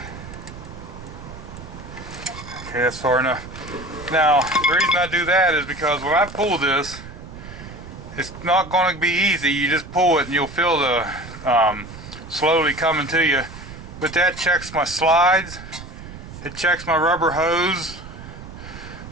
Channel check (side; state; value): right; noise; rumble, 14 dB below the sound